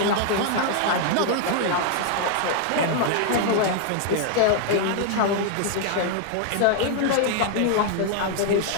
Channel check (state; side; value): different; both; correlation 0.00